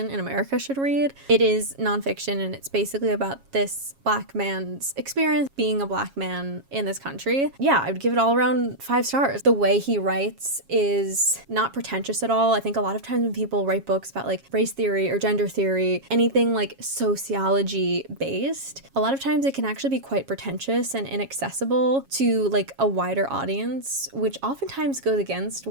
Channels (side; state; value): left; late; 7.3 ms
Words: in America should read. It is nonfiction, and it's basically about this black man's experience being a black man in this country. Yeah, I would give it all around 5 stars. The way he writes is not pretentious at all. I think a lot of times when people write books about like race theory or gender theory, anything like sociology based, a lot of times it can actually be quite pretentious and inaccessible to like a wider audience, which oftentimes goes against